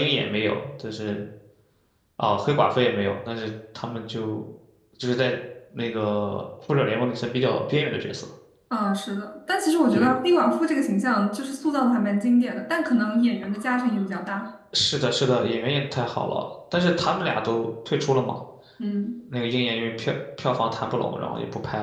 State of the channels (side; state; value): both; identical; correlation 1.00